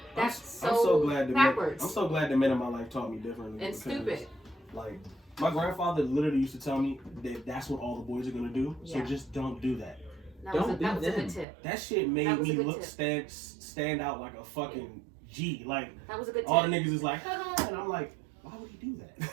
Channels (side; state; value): left; drops out; at 11.5 s